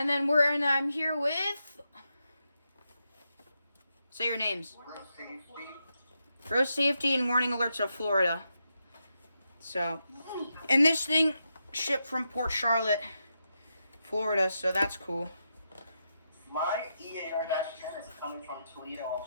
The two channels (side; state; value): both; inverted; correlation -0.85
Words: I'm here with. Say your names. Road Safety and Warning Alerts of Florida. So, and this thing shipped from Port Charlotte, Florida, so that's cool. My EAR-10 is coming from Toledo,